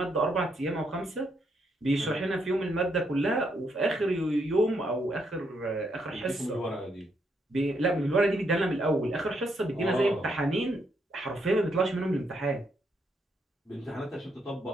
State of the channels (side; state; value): both; normal; correlation 0.76